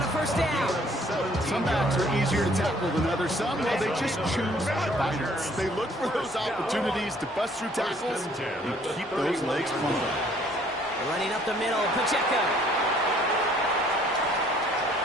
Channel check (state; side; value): normal; both; correlation 0.60